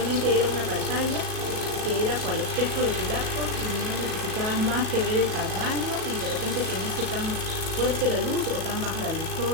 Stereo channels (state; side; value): late; left; 37 ms